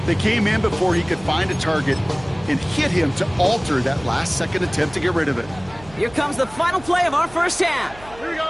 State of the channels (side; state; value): right; noise; hum, 20 dB below the sound